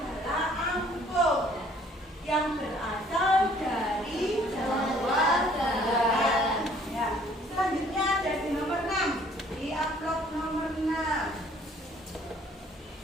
angklung yang berasal dari Jawa Barat. Ya. Selanjutnya ada di nomor 6, di amplop nomor 6.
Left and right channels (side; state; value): both; normal; correlation 0.58